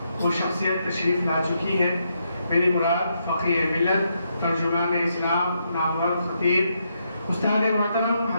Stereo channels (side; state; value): both; inverted; correlation -0.79